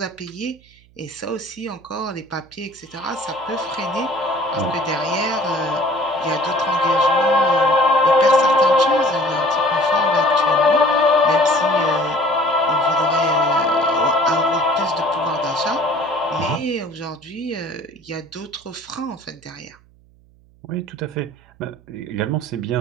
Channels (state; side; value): noise; right; hum, 29 dB below the sound